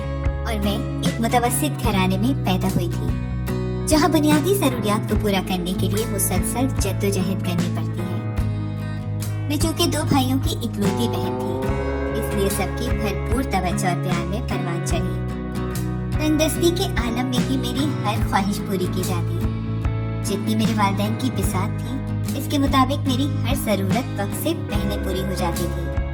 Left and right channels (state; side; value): identical; both; correlation 1.00